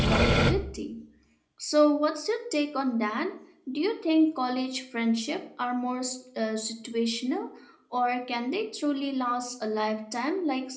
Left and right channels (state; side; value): identical; both; correlation 1.00